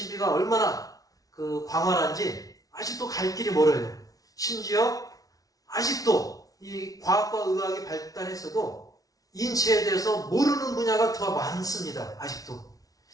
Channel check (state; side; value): late; right; 0.18 ms